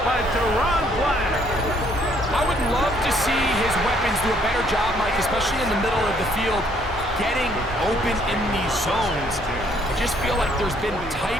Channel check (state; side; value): normal; both; correlation 0.65